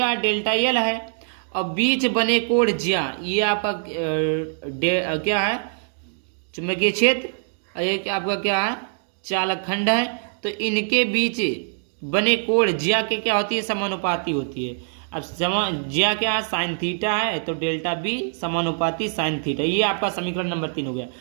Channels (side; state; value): left; silent; digital silence